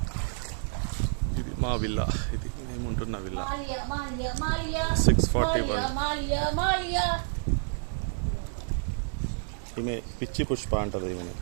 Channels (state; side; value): silent; left; digital silence